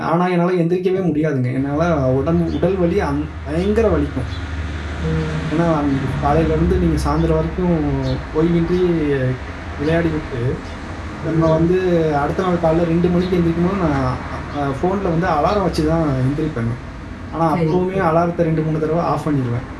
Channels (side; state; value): both; identical; correlation 1.00